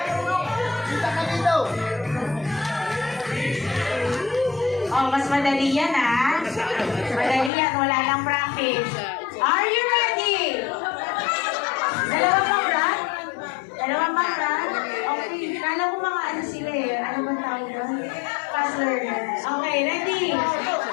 Oh, mas madali yan, ha? Madali yan. Wala lang practice. Are you ready? Dalawang pang run? Okay. Kala ko mga ano sila eh. Ano ba tawag doon? Fast learner. Okay, ready?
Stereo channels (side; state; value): right; drops out; at 7.5 s